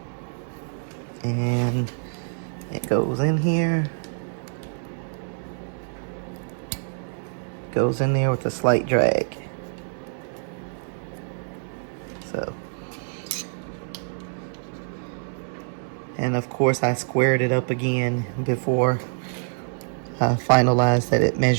and it goes in here, goes in there with a slight drag. So, and of course I squared it up again before I finalized that it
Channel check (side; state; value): left; silent; digital silence